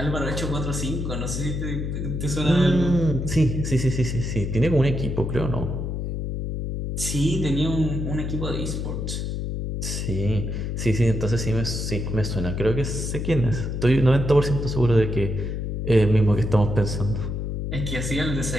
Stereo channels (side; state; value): left; noise; hum, 3 dB below the sound